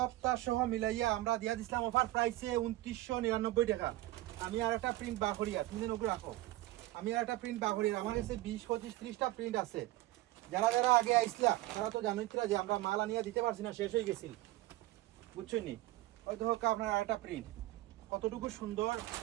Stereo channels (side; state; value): left; quieter; 17.4 dB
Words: সহ মিলাইয়া আমরা দিয়া দিছিলাম অফার প্রাইসে 2999 টাকা। আমি আর একটা প্রিন্ট বাহরিয়া তুমি নগর রাখো আমি আর একটা প্রিন্ট বাহরিয়া আমার কাছে 20-25-30টা প্রিন্ট আছে। যারা যারা আগে আইসলা তারা তো জানোই যে আমরা মাল আনিয়া দিতে পারছি না, শেষ হয়ে গেছিল বুঝছেন নি। ওই দেখো আপনার আর একটা প্রিন্ট কতটুকু সুন্দর